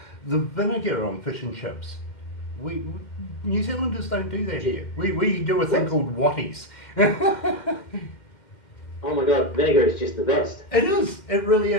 vinegar on fish and chips. We New Zealanders don't do that here. We do a thing called watties. Oh my God, vinegar is just the best. It is. It really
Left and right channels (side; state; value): right; late; 2.1 ms